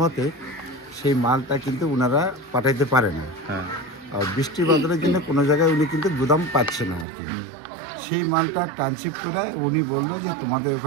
সেই মালটা কিন্তু ওনারা পাঠাইতে পারে না। হ্যাঁ আর বৃষ্টি বাদলের জন্য কোনো জায়গায় উনি কিন্তু গুদাম পাচ্ছে না আর কি। সেই মালটা ট্রান্সশিপ করে উনি বললো যে তোমাদের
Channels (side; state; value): left; drops out; at 7.1 s